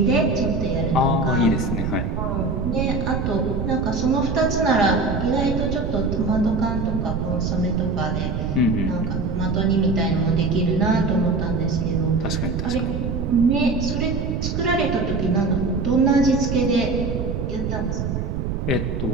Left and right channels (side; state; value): right; noise; rumble, 2 dB below the sound